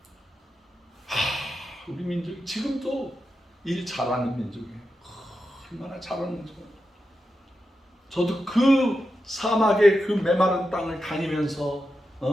우리 민족 지금도 일 잘하는 민족이에요. 얼마나 잘하는 민족이에요. 저도 그 사막의 그 메마른 땅을 다니면서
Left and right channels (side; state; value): both; normal; correlation 0.89